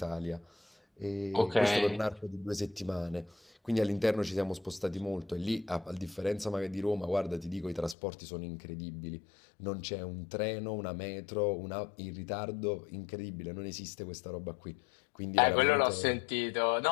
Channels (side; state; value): right; drops out; at 8.0 s